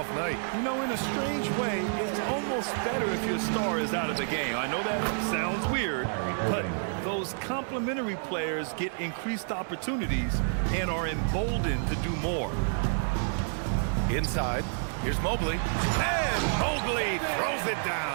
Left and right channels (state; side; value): silent; left; digital silence